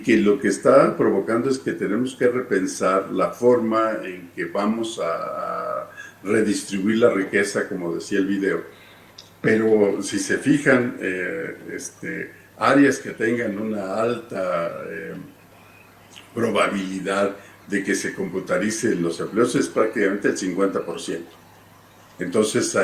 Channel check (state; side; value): identical; both; correlation 1.00